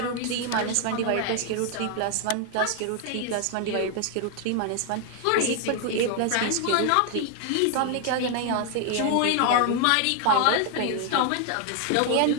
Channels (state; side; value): different; both; correlation 0.00